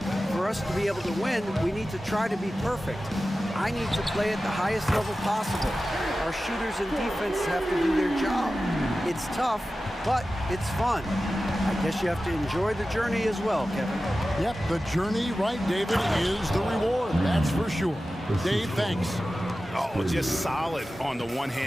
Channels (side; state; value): both; normal; correlation 0.94